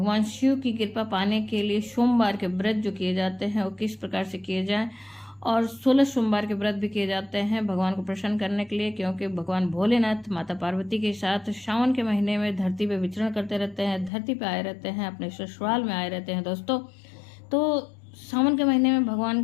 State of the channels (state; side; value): drops out; right; at 14.1 s